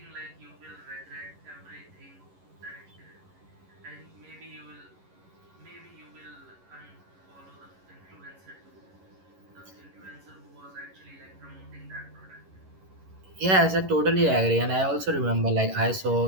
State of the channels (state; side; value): late; left; 11 ms